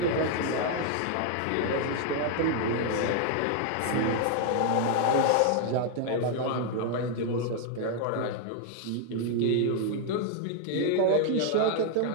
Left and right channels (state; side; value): different; both; correlation 0.00